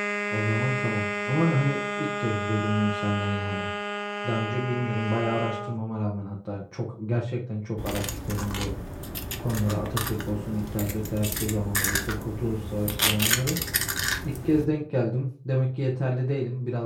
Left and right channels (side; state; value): both; identical; correlation 1.00